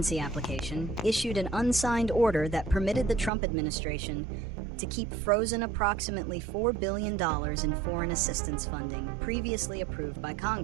application, issued an unsigned order that permitted the Trump administration to keep frozen approximately $4 billion in foreign assistance funding previously approved by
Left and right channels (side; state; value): left; drops out; at 3.3 s